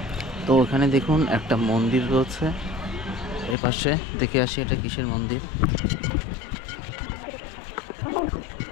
তো এখানে দেখুন একটা মন্দির রয়েছে, এপাশে দেখে আসি এটা কিসের মন্দির।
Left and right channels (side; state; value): right; drops out; at 3.6 s